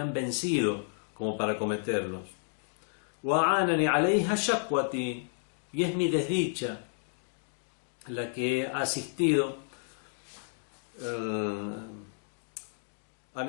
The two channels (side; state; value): right; silent; 57 dB below the other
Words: vencido como para cometerlos. Wa anani alayha shakwati, y es mi desdicha la que ha asistido a